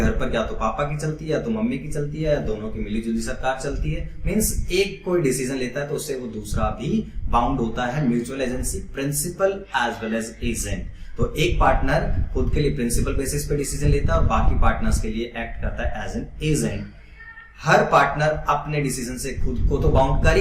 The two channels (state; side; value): identical; both; correlation 1.00